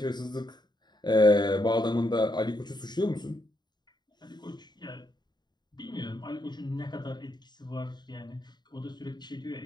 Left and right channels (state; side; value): late; right; 0.21 ms